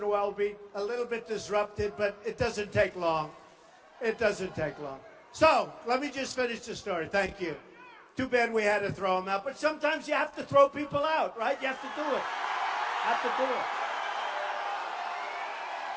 a while be a little bit disrupted, but it doesn't take long. It doesn't take long. So, let me just finish the story. Thank you. Too bad we had to throw them out, but sometimes you have to throw people out, right? You have to do it. Have to do it.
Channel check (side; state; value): both; identical; correlation 1.00